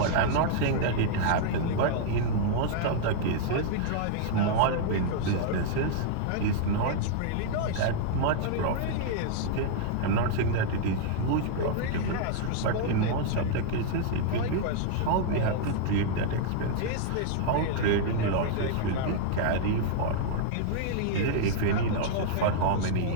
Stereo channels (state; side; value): different; both; correlation -0.01